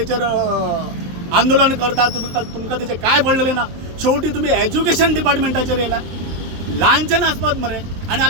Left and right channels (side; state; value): left; late; 23 ms